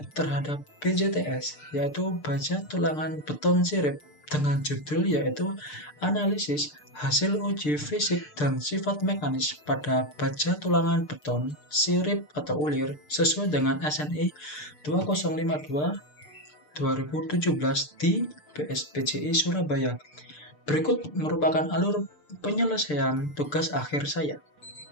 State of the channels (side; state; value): right; late; 6.7 ms